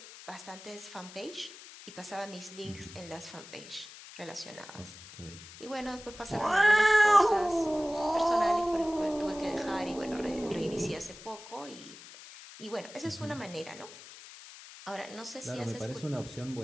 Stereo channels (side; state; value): left; noise; hiss, 16 dB below the sound